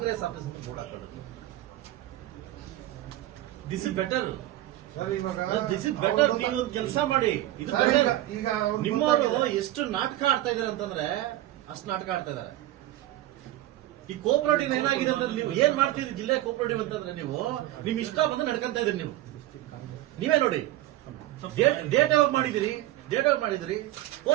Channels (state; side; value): quieter; left; 15.1 dB